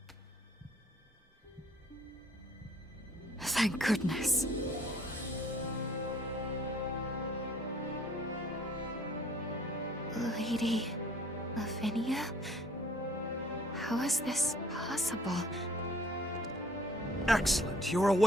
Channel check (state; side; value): normal; both; correlation 0.56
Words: Thank goodness. Lady Lavinia? How is this possible? Excellent, you're